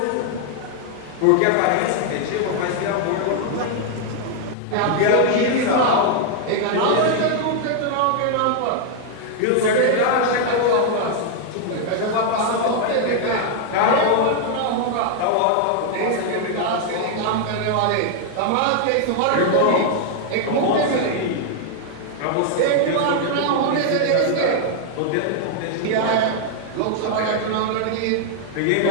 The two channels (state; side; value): different; both; correlation 0.00